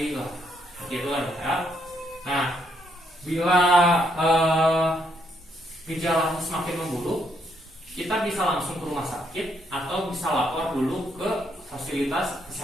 lah, gitu lah ya. Nah, bila gejalanya semakin memburuk, kita bisa langsung ke rumah sakit atau bisa lapor dulu ke fasilitas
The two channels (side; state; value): both; normal; correlation 0.74